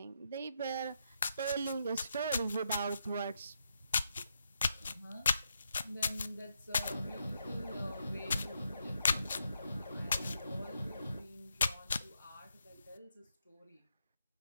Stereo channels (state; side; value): inverted; both; correlation -0.81